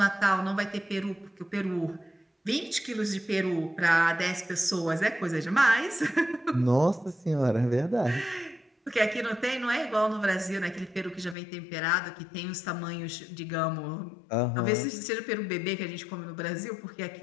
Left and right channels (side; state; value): right; drops out; at 11.4 s